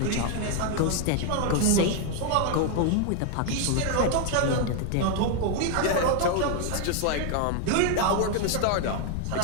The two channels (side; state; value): both; different; correlation 0.00